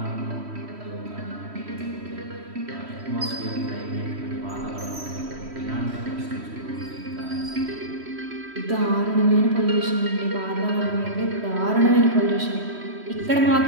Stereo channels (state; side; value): late; left; 3.1 ms